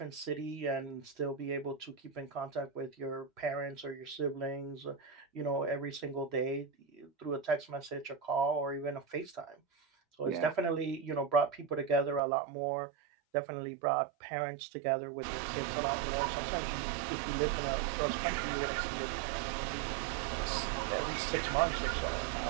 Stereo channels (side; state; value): left; drops out; at 12.2 s